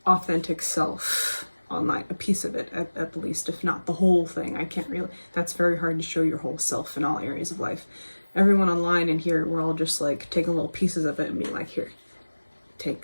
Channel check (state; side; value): inverted; both; correlation -1.00